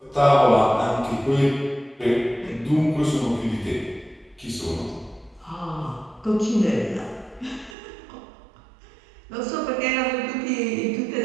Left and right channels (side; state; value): left; drops out; at 7.8 s